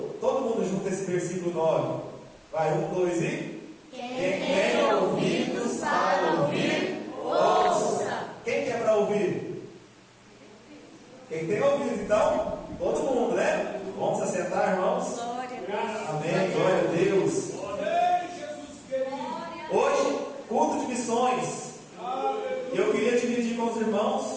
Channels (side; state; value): both; identical; correlation 1.00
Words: todo mundo junto esse versículo 9. Vai, 1, 2 e... Quem tem ouvidos para ouvir, ouça. Quem quer para ouvir? Quem tem ouvido, então? Todo mundo, né? Vamos se assentar, irmãos? Glória a Deus. Amém, glória a Deus. Hoje, culto de missões. Eu queria dividir com os